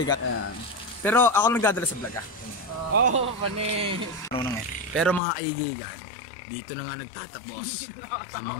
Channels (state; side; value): drops out; right; at 5.2 s